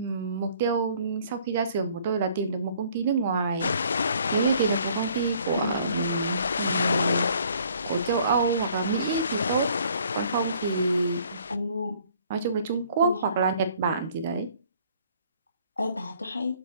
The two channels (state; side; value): inverted; both; correlation -0.59